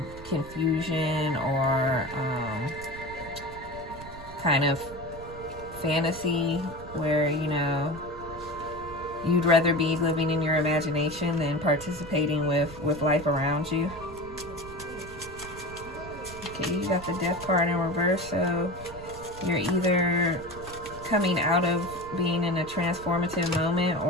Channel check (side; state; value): right; noise; rumble, 15 dB below the sound